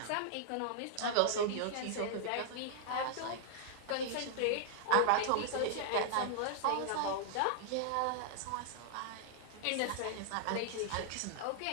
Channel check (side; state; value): both; different; correlation -0.01